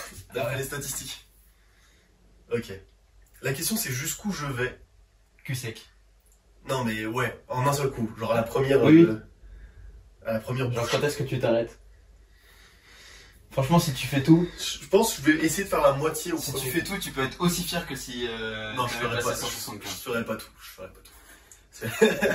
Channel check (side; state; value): both; identical; correlation 1.00